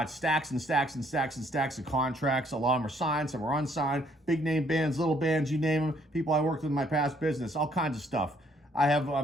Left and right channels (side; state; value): both; normal; correlation 0.66